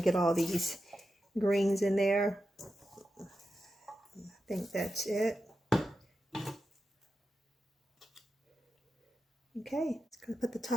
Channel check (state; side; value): normal; both; correlation 0.90